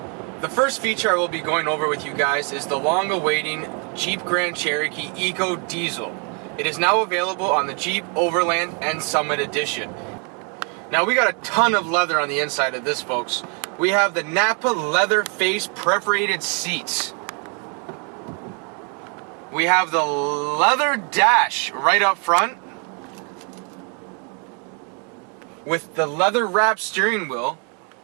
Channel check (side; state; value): left; quieter; 37.5 dB